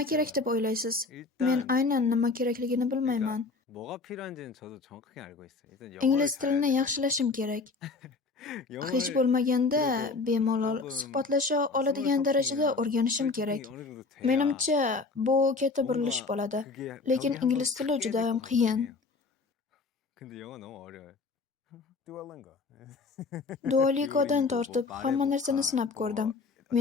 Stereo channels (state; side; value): quieter; right; 4.0 dB